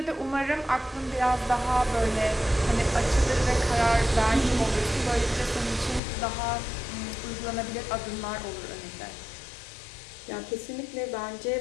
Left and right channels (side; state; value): right; drops out; at 6.0 s